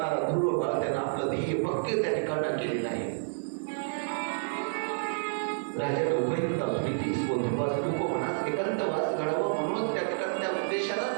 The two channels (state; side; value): silent; left; 58 dB below the other